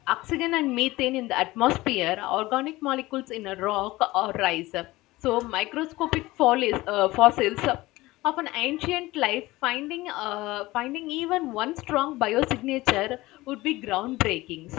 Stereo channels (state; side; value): quieter; right; 19.3 dB